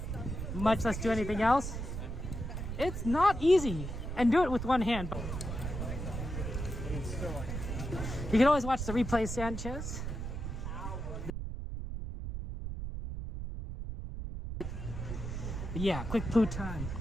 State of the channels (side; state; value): right; noise; rumble, 5 dB below the sound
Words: much less do anything else? It's not easy. And do it with one hand. You can always watch the replay, Sanchez. But yeah, quick poo time.